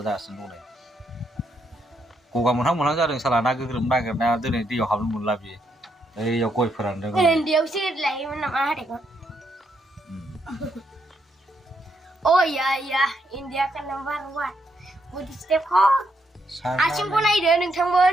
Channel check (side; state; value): both; normal; correlation 0.77